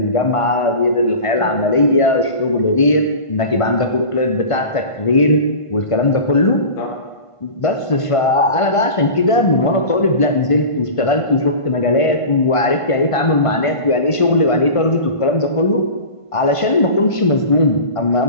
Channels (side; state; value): right; late; 1.5 ms